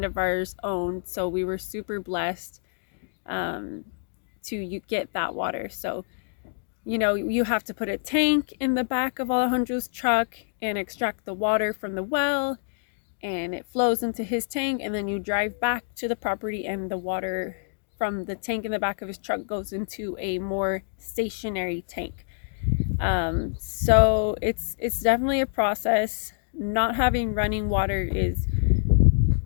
of ours owned. So we were super blessed to get that water. So, you know, you have to put a tank in the back of Alejandro's truck and extract the water from the well, and it flows into his tank, and then you drive back to the property, and the water from the tank in the back of his truck goes into a more stationary tank. So it's definitely a process. Not having running water is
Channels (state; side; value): silent; right; digital silence